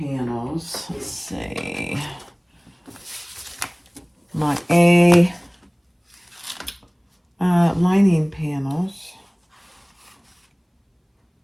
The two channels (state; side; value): identical; both; correlation 1.00